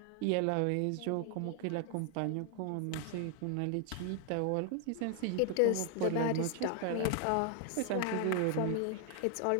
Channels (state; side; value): different; both; correlation 0.00